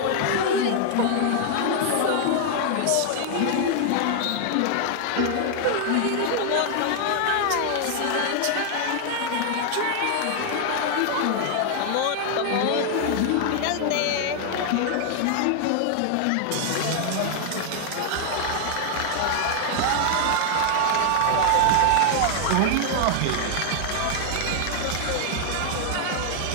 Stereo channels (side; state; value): both; different; correlation 0.00